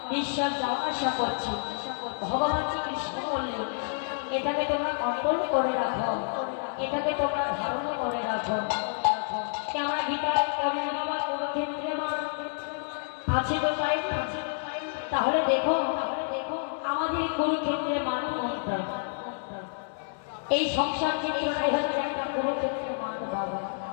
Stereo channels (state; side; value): silent; right; digital silence